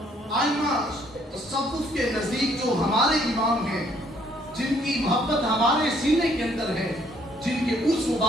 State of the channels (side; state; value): both; normal; correlation 0.65